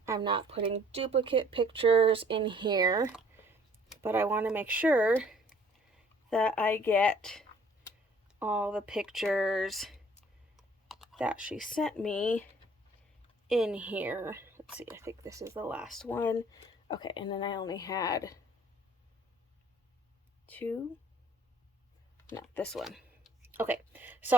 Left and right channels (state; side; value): normal; both; correlation 0.56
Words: I'm not putting duplicate pictures in here, but I want to make sure that I get all the pictures that she sent me in here. Let's see, I think this is the last one. Okay, and then I only had two. No, this one. Okay, so